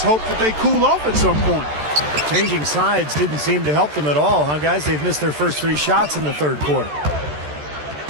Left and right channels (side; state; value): left; late; 13 ms